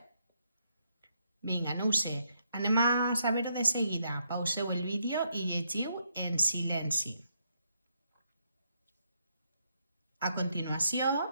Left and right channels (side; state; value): both; inverted; correlation -0.76